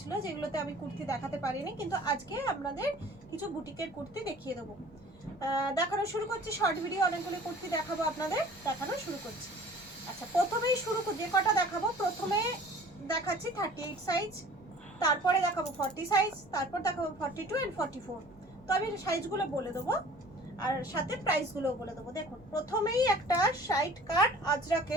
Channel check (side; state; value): both; normal; correlation 0.47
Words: যেগুলোতে আমি কুর্তি দেখাতে পারিনি, কিন্তু আজকে আপনাদের কিছু বুটিকের কুর্তি দেখিয়ে দেবো। দেখানো শুরু করছি, শর্ট ভিডিও অনেকগুলো কুর্তি দেখাবো আপনাদের, দেখানো শুরু করছি। আচ্ছা, প্রথমেই যে কটা দেখাবো, প্রথমে দেখাচ্ছি 38 সাইজ, তারপরে দেখাবো 40 সাইজ, তারপর দেখাবো 42 and 44। তো আমি সাইজগুলো বলে দেবো আর সাথে প্রাইসগুলো বলে দেবো। দেখুন, প্রথমেই একটা সাইড কাট